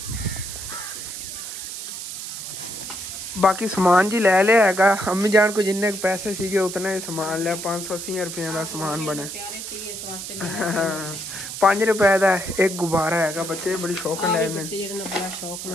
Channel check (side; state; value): right; noise; hiss, 8 dB below the sound